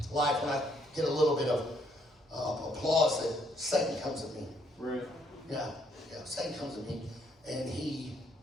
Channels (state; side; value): normal; both; correlation 0.69